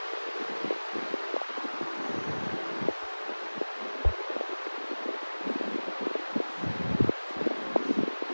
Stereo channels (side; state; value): both; inverted; correlation -1.00